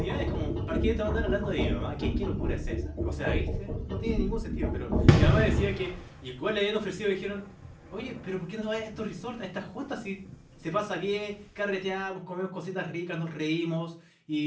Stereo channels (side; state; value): both; identical; correlation 1.00